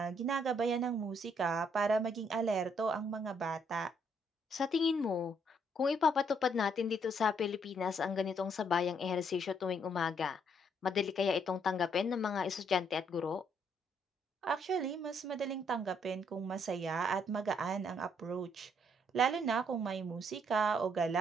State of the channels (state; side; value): normal; both; correlation 0.70